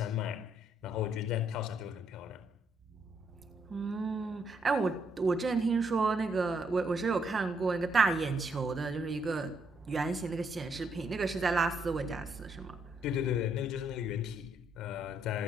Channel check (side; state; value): both; normal; correlation 0.74